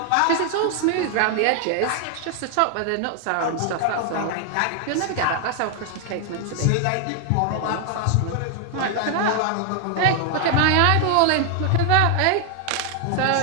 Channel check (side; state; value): both; different; correlation 0.00